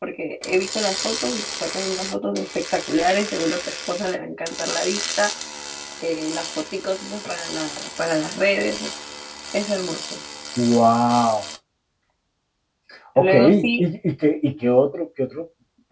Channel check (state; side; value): identical; both; correlation 1.00